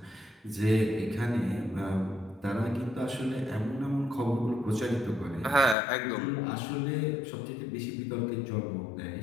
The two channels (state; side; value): drops out; right; at 5.8 s